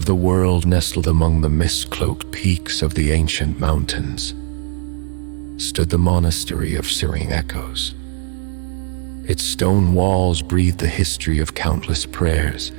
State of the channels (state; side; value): silent; left; digital silence